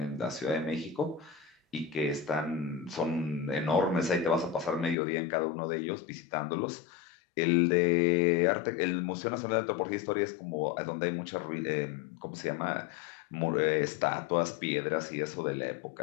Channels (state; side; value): drops out; right; at 5.0 s